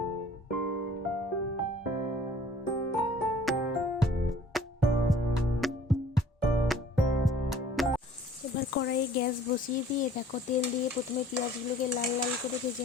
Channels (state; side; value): normal; both; correlation 0.52